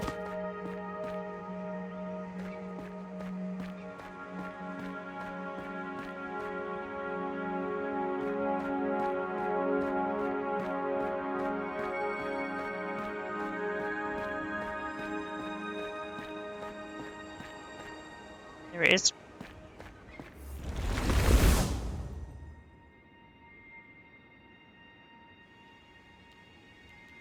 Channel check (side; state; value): both; identical; correlation 1.00